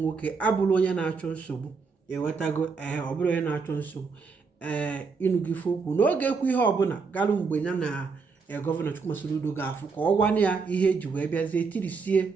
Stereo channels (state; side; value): quieter; left; 4.9 dB